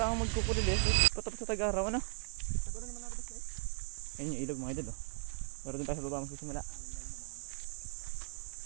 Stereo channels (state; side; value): silent; left; 53 dB below the other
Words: ang magkukulil eh. Patapos sa Tagaraw ano? Tagal naman ako basta eh. Ayun yung ilog mga idol oh. Pero dun tayo sa baba magsisimula.